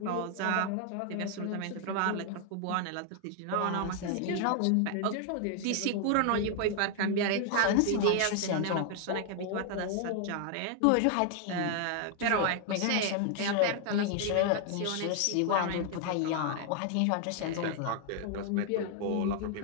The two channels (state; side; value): different; both; correlation 0.00